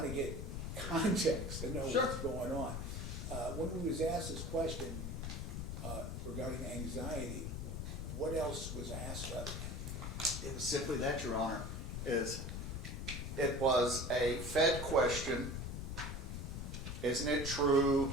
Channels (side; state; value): left; noise; rumble, 5 dB below the sound